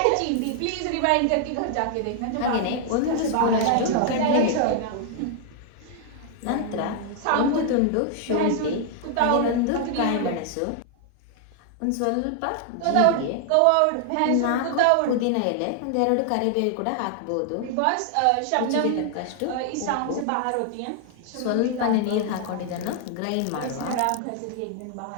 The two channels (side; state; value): both; different; correlation 0.00